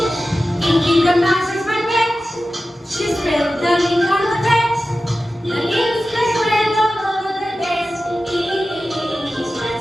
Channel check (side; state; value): both; normal; correlation 0.94